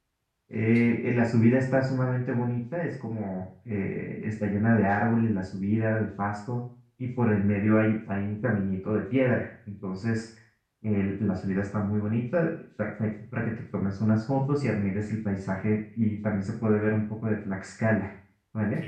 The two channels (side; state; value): both; identical; correlation 1.00